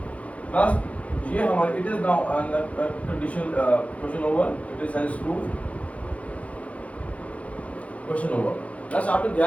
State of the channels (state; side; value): late; right; 0.065 ms